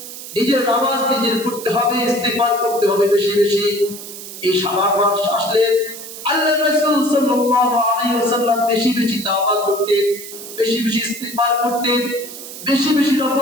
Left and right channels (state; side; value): noise; right; hiss, 12 dB below the sound